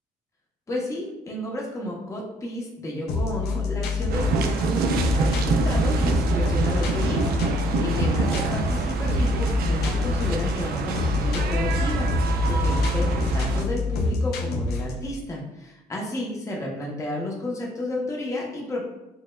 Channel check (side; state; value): both; normal; correlation 0.66